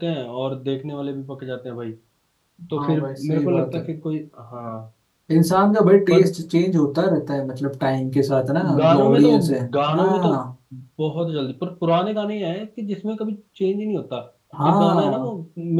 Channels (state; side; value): identical; both; correlation 1.00